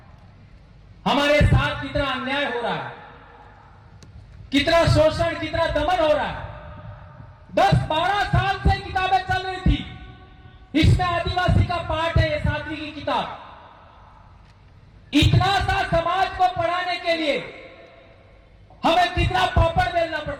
हमारे साथ कितना अन्याय हो रहा है, कितना शोषण, कितना दमन हो रहा है। 10-12 साल से किताबें चल रही थी, इसमें आदिवासी का पाठ है, ये 7वीं की किताब। इतना सा समाज को पढ़ाने के लिए हमें कितना पापड़ बेलना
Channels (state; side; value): identical; both; correlation 1.00